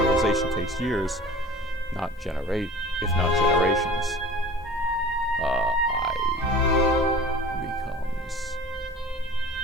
takes years, if not generations.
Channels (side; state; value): both; normal; correlation 0.41